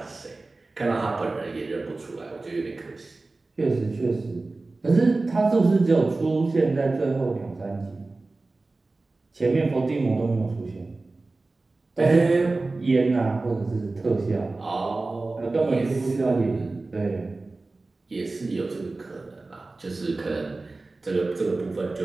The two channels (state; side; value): quieter; left; 3.4 dB